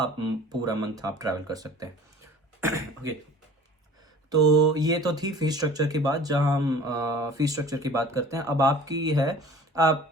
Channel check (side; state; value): both; normal; correlation 0.45